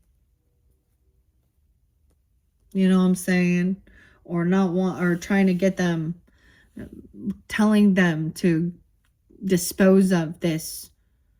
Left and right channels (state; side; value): identical; both; correlation 1.00